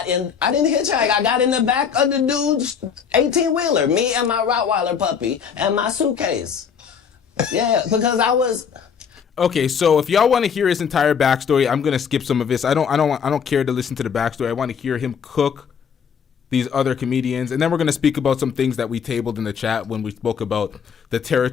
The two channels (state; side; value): quieter; right; 7.0 dB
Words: didn't hitchhike. I got in the back of the dude's 18-wheeler. Me and my Rottweiler puppy and my suitcase. Yeah, because I was. Okay, so if y'all want to hear his entire backstory, I'm gonna skip some of this. I don't care to listen to the backstory. I want to hear him cook these other comedians, and then we're gonna speak about some things that we tabled in the chat when we spoke about the